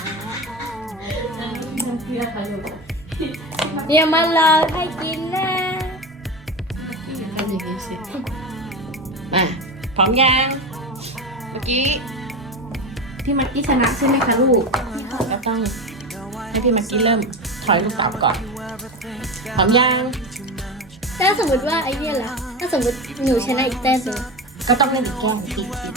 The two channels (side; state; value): both; normal; correlation 0.23